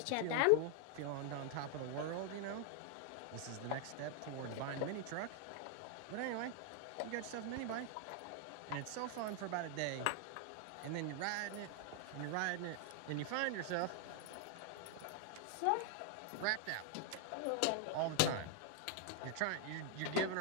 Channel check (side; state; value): both; different; correlation 0.00